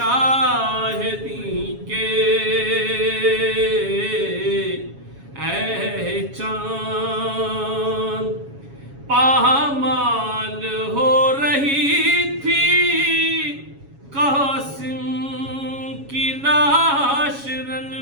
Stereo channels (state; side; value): late; left; 7.2 ms